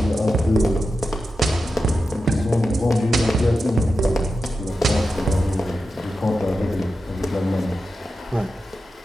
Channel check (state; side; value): normal; both; correlation 0.90